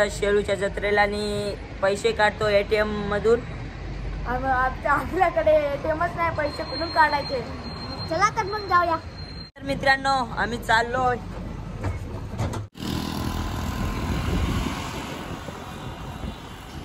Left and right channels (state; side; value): identical; both; correlation 1.00